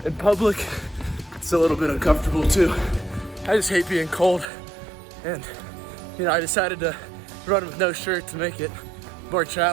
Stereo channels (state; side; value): drops out; left; at 4.5 s